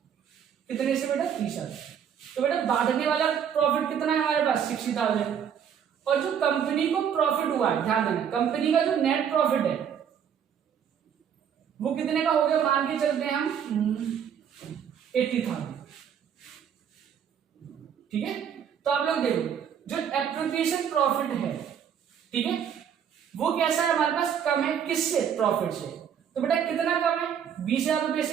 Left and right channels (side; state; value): left; quieter; 8.3 dB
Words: कितने से बेटा 30,000। तो बेटा बांटने वाला प्रॉफिट कितना है हमारे पास 60,000, और जो कंपनी को प्रॉफिट हुआ है, ध्यान देना, कंपनी का जो नेट प्रॉफिट है वो कितने का हो गया, मान के चलते हैं हम 80,000, ठीक है। तो आप लोग देखो जो एप्रोप्रिएशन प्रॉफिट है, ठीक है, वो कैसा है हमारे पास, कम है किससे, प्रॉफिट से। तो बेटा कितना कम है, 20,000 रुपए